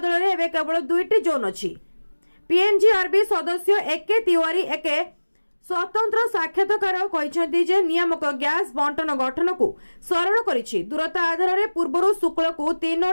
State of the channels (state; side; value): inverted; both; correlation -1.00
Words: रे एबे केवल 2टी जोन अछि। पीएनजीआरबी सदस्य एके तिवारी एके स्वतंत्र साक्षात्कार कहते जे नियामक गैस बंटन गठन को सरल करिछि। दूरता आधार में पूर्व शुक्ल को